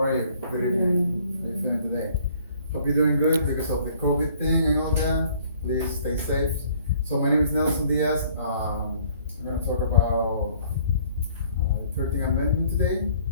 you? Good evening. How you feeling today? Hope you're doing good because of the COVID thing and all that. Please stay safe. So my name is Nelson Diaz. I'm gonna talk about 13th Amendment today,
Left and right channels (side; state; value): both; inverted; correlation -0.59